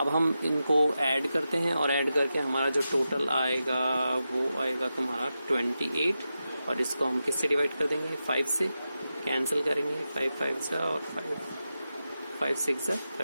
हम इनको ऐड करते हैं और ऐड करके हमारा जो टोटल आएगा वो आएगा तुम्हारा 28, और इसको हम किससे डिवाइड कर देंगे, 5 से कैंसिल करेंगे, 5 5 जा और 5 6 जा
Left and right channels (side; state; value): both; inverted; correlation -0.90